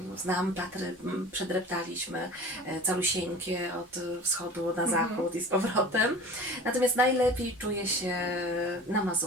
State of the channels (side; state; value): both; normal; correlation 0.39